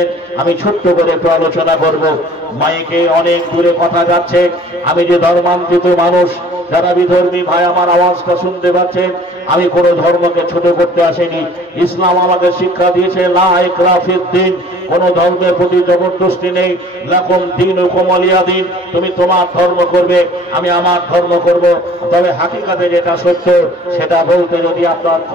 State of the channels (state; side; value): normal; both; correlation 0.51